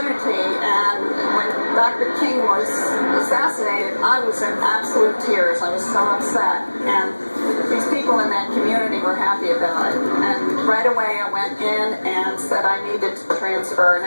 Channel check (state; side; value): inverted; both; correlation -1.00